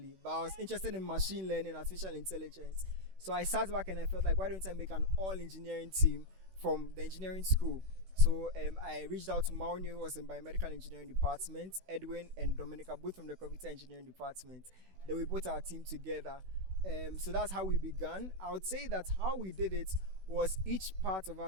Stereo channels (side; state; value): left; late; 16 ms